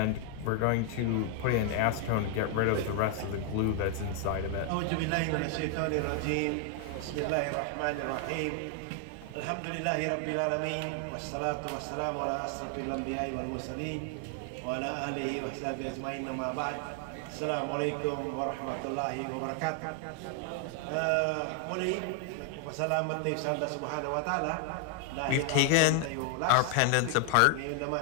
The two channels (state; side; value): different; both; correlation 0.00